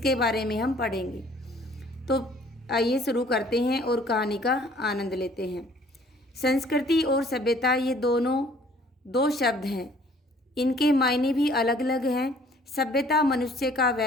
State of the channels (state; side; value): normal; both; correlation 0.57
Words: बारे में हम पढ़ेंगे। तो आइए शुरू करते हैं और कहानी का आनंद लेते हैं। संस्कृति और सभ्यता ये दोनों दो शब्द हैं, इनके मायने भी अलग अलग हैं। सभ्यता मनुष्य का